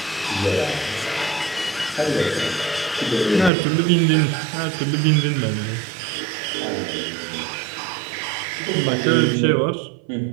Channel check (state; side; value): drops out; left; at 3.5 s